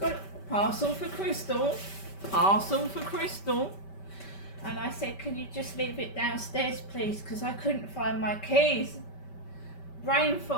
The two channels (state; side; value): late; right; 5.2 ms